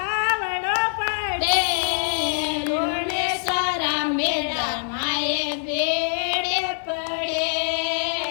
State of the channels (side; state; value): right; silent; 57 dB below the other